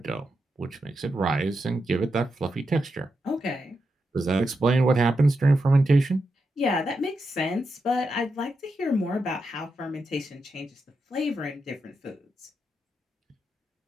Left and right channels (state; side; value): normal; both; correlation 0.86